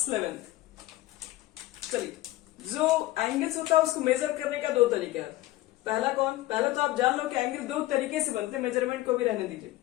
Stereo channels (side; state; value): right; quieter; 16.9 dB